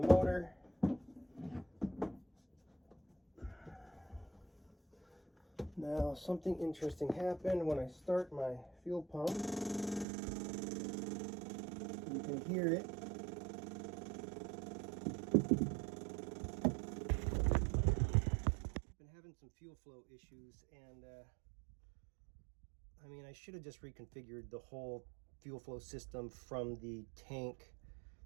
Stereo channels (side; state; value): left; drops out; at 10.1 s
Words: motor. Now something interesting happened when I start my fuel pump. You can hear it. Some fuel flow issues, and I mean, I should have just reconfigured the whole fuel flow system from the tank